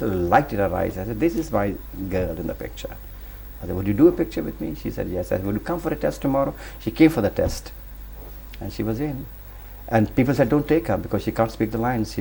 light in her eyes. I said, "This is my girl in the picture." I said, "Would you do a picture with me?" She said, "Yes." I said, "Would you come for a test tomorrow?" She came for the test, and she was in. And people said, "Don't take her because she can't speak the lines.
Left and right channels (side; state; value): both; identical; correlation 1.00